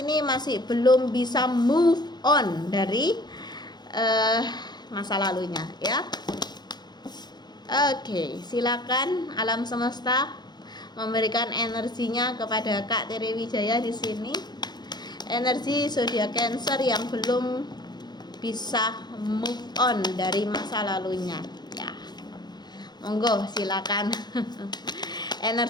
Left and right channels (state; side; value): late; right; 0.21 ms